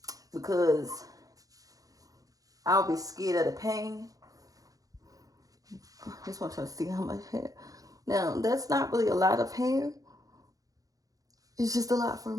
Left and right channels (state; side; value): late; left; 0.17 ms